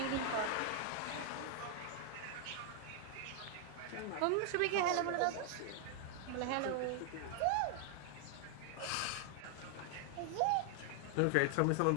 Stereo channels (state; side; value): different; both; correlation 0.00